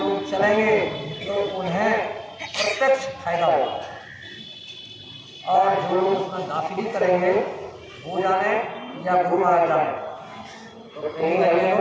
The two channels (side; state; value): both; identical; correlation 1.00